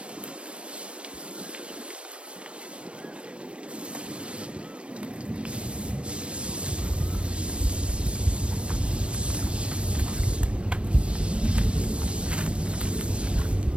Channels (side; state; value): left; late; 0.059 ms